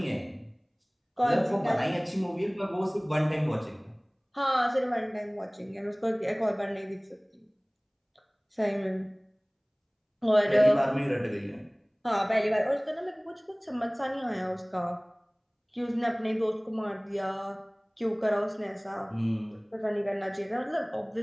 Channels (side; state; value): both; identical; correlation 1.00